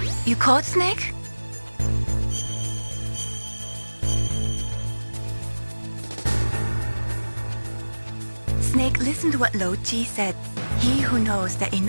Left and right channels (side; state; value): both; inverted; correlation -1.00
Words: You caught Snake? Snake, listen to what Lo Ji said. He who knows that